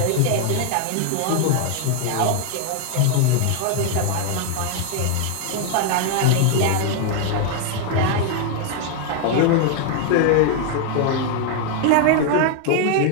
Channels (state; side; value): different; both; correlation 0.00